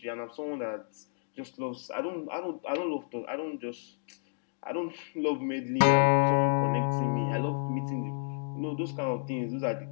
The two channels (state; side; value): silent; right; digital silence